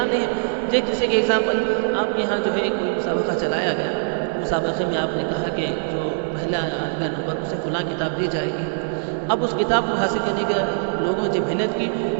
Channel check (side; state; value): left; silent; digital silence